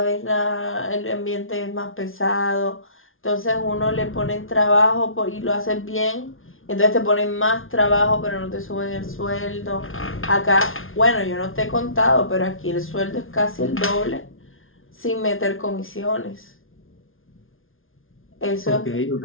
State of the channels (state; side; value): late; right; 0.59 ms